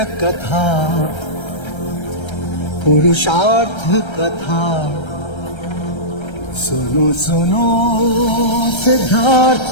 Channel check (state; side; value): late; right; 1.3 ms